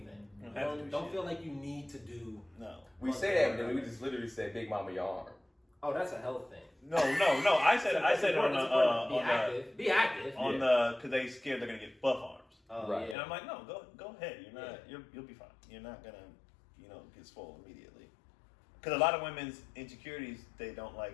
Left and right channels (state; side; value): drops out; right; at 13.2 s